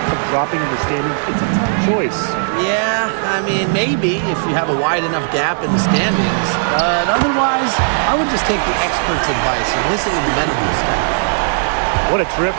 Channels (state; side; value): silent; left; 69 dB below the other